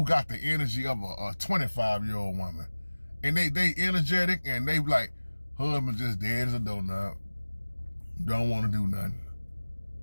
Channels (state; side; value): inverted; both; correlation -1.00